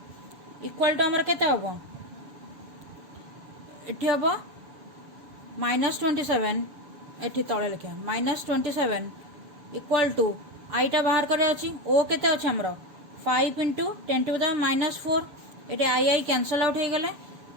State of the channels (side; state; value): left; late; 7.1 ms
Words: इक्वल टू आमर केते हम ये हम -27 ये तले लिखा -27 इक्वल टू आईटा बाहर करे अच्छी o केते अच्छे आमर 5 × 10⁻⁻4 ये आई कैंसल आउट हो गले